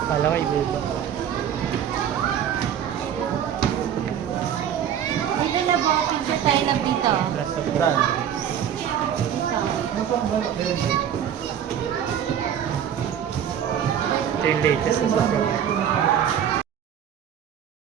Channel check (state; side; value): quieter; left; 9.3 dB